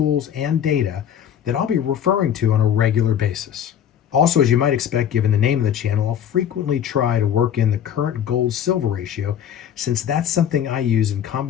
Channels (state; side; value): quieter; right; 9.4 dB